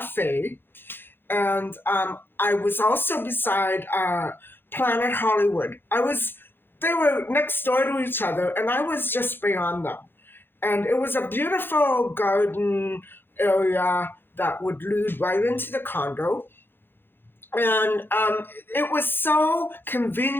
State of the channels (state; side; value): late; right; 0.10 ms